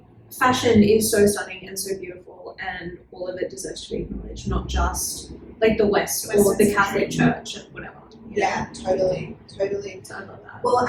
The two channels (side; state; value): both; identical; correlation 1.00